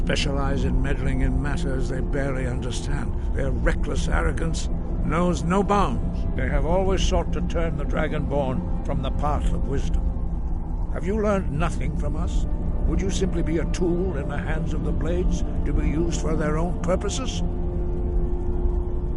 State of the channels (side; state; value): both; identical; correlation 1.00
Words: in meddling in matters they barely understand. Their reckless arrogance knows no bounds. They have always sought to turn the Dragonborn from the path of wisdom. Have you learned nothing from us? Would you simply be a tool in the hands of the Blades to be used for their own purposes?